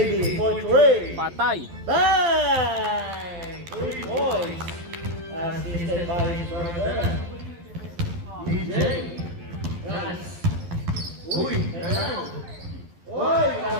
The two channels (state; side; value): late; left; 12 ms